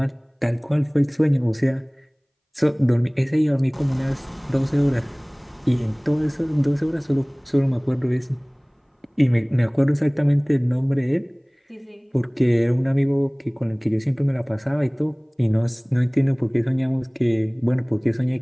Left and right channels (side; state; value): both; identical; correlation 1.00